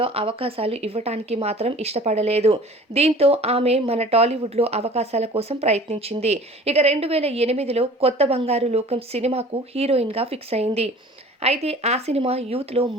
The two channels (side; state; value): both; normal; correlation 0.45